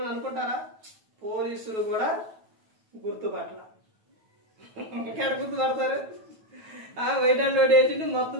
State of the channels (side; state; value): left; late; 9.2 ms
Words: అనుకుంటారా? పోలీసులు కూడా గుర్తుపట్ల. ఎక్కడ గుర్తుపడతారు? వైట్ అండ్ వైట్ వేసిండు, మొత్తం